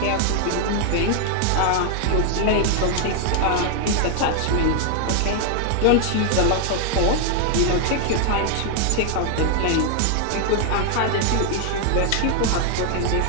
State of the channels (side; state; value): both; different; correlation 0.00